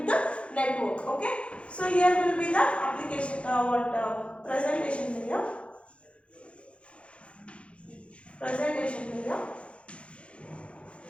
the network. Okay, so here will be the application presentation layer.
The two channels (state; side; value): late; right; 0.060 ms